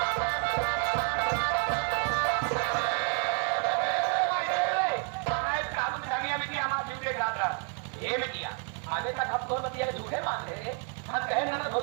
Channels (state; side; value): quieter; left; 39.4 dB